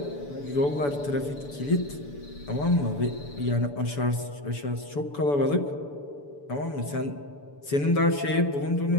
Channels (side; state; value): right; late; 7.0 ms